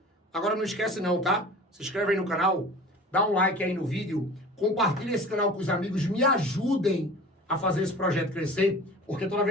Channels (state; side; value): normal; both; correlation 0.40